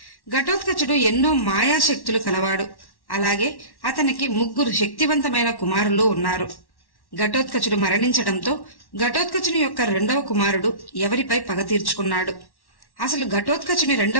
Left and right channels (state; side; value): late; right; 1.1 ms